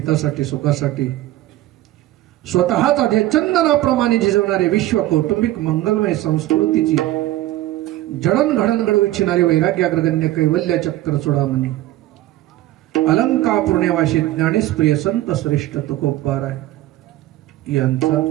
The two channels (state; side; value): quieter; left; 15.5 dB